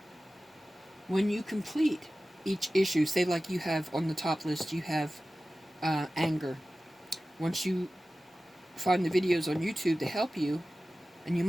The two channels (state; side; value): normal; both; correlation 0.96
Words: When you complete each issue, say like you have on the top list, you have anger. Once you find the videos on YouTube to help you, and you